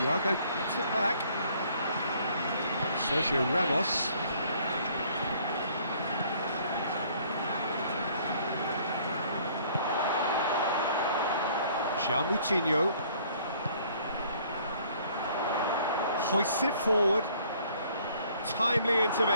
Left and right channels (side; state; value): both; inverted; correlation -0.59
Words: gets it back. Sergio Ramos. João Moutinho. Hoists it forward. Timely